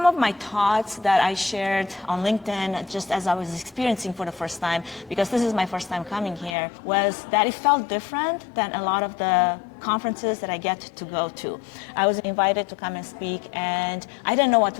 of my thoughts that I shared on LinkedIn just as I was experiencing for the first time, because this is my first time coming here, was that it felt different than a lot of the conferences that I get to go to. I was invited to come and speak and I didn't know what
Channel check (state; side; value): drops out; right; at 6.6 s